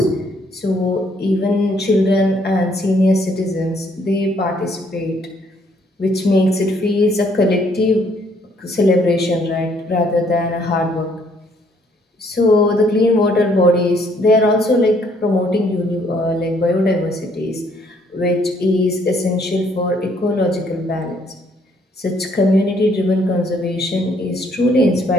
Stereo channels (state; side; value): normal; both; correlation 0.66